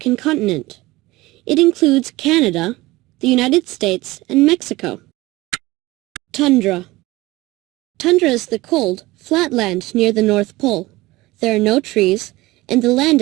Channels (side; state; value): left; quieter; 19.9 dB